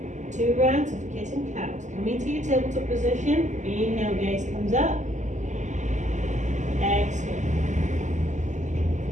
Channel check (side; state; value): left; late; 0.35 ms